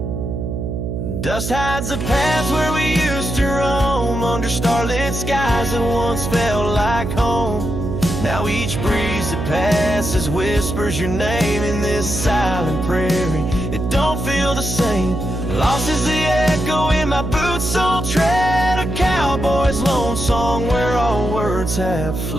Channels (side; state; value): right; noise; hum, 4 dB below the sound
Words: Dust hides the paths where we used to roam, under starlit skies that once felt like home. Now each breeze that passes whispers your name in this silent prairie. It don't feel the same. Lost is the echo in my boots, so tread a cowboy's lone song where all words have